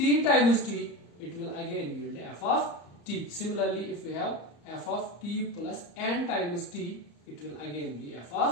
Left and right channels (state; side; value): late; right; 34 ms